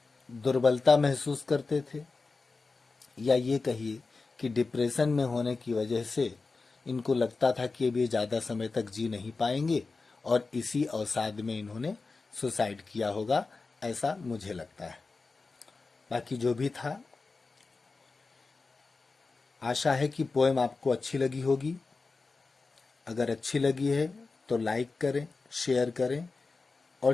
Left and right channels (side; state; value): right; quieter; 4.0 dB